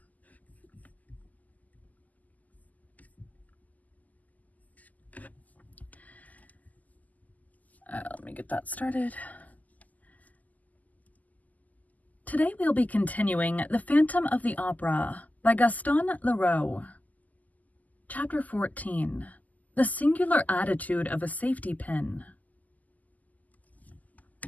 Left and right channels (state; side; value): late; right; 0.079 ms